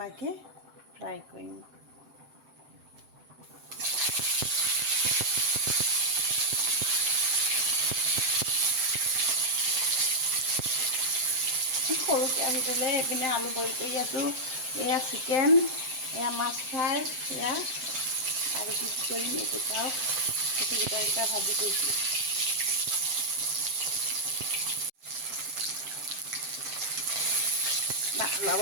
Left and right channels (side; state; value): left; late; 7.7 ms